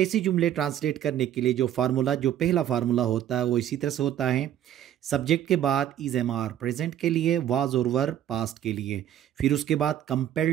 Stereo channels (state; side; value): quieter; left; 11.0 dB